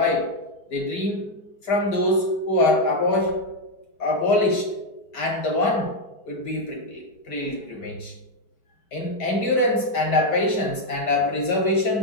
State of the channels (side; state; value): right; late; 5.0 ms